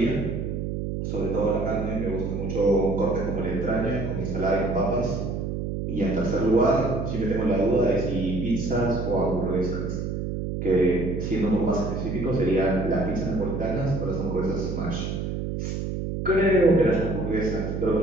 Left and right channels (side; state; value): right; noise; hum, 3 dB below the sound